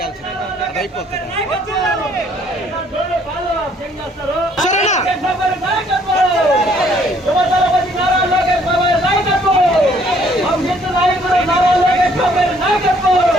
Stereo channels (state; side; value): normal; both; correlation 0.63